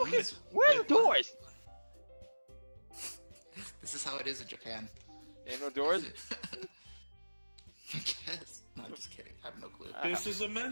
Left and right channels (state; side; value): inverted; both; correlation -1.00